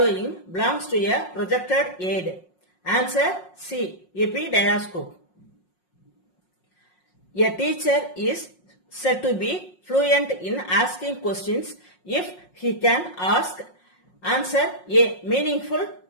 belongs to a projected aid? Answer C. Epidiascope. A teacher is said to be fluent in asking questions if he can answer A. Meaningful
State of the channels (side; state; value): right; late; 5.5 ms